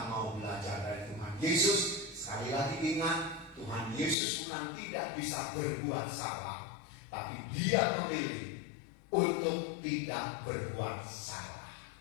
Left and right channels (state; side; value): drops out; right; at 4.2 s